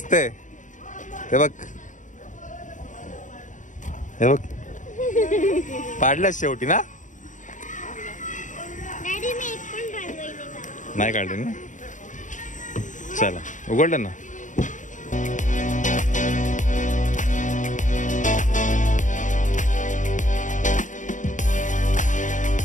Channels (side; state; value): right; late; 0.37 ms